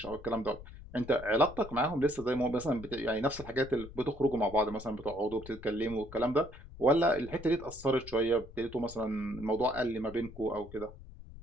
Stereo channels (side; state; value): left; noise; rumble, 16 dB below the sound